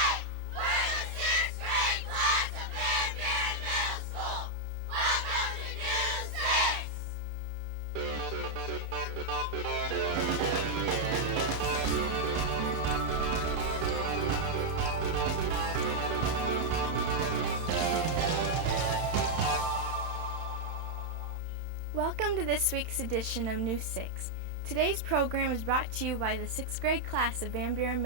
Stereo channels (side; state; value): left; late; 31 ms